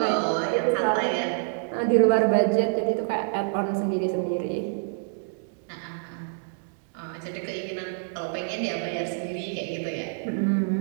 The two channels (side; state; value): left; silent; digital silence